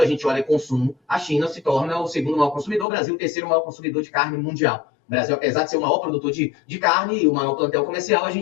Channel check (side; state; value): right; drops out; at 2.9 s